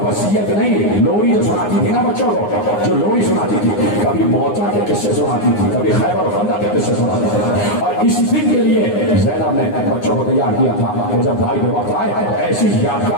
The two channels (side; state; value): right; late; 9.7 ms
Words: وصیت نہیں، لوری جو سناتی تھی نا بچوں کو، جو لوری سناتی تھی، کبھی موتا کے قصے سناتی تھی، کبھی خیبر و خندق کے قصے سناتی تھی، اور اس دن کے لیے زینب نے بچوں کو تیار کیا تھا کہ جب بھائی کے وقت آئے ایسی